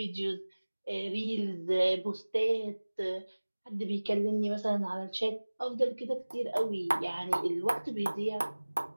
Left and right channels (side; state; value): both; inverted; correlation -1.00